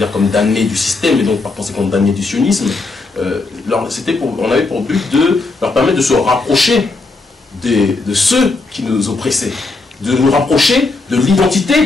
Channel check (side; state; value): right; quieter; 3.5 dB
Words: comme damnée du système, et donc par conséquent damnée du sionisme, on avait pour but de leur permettre de se rapprocher de ceux qui nous oppressaient, de nous rapprocher de